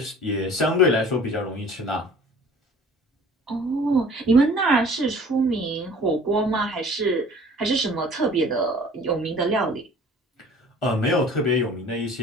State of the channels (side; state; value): both; normal; correlation 0.48